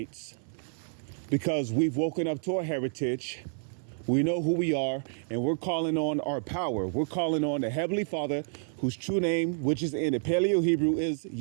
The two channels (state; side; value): silent; left; 57 dB below the other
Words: because we've woken up to our heritage. We know who we are, and we're calling on our power. We're calling on the Heavenly Father, whose true name, which is in the Paleo Hebrew, is